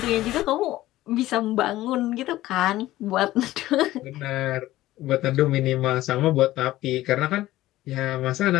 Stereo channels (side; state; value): right; quieter; 15.8 dB